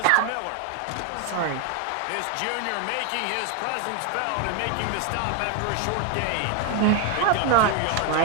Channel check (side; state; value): both; different; correlation 0.01